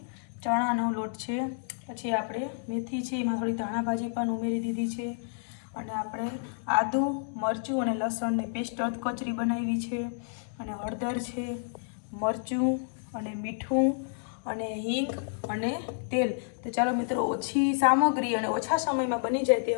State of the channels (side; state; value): right; silent; digital silence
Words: ચણાનો લોટ છે। પછી આપણે મેથી છે, એમાં થોડી ધાણા ભાજી પણ ઉમેરી દીધી છે। અને આપણે આદુ, મરચું અને લસણની પેસ્ટ કચરી બનાવી છે। અને હળદર છે, મરચું અને મીઠું અને હિંગ અને તેલ। તો ચાલો મિત્રો, ઓછી સામગ્રી અને ઓછા સમયમાં બની જાય